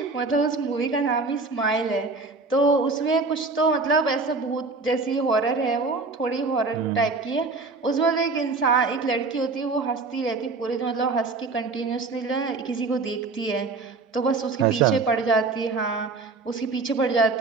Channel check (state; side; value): quieter; left; 3.9 dB